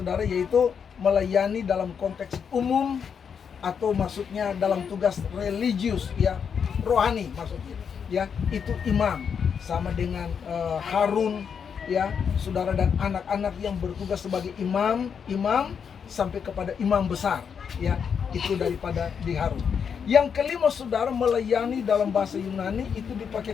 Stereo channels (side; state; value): right; quieter; 6.9 dB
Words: yaitu melayani dalam konteks umum atau maksudnya dalam tugas religius ya, rohani maksudnya ya. Itu imam sama dengan Harun ya saudara, dan anak-anak yang bertugas sebagai imam sampai kepada imam besar ya, itu daripada di Harun. Yang kelima saudara, melayani dalam bahasa Yunani itu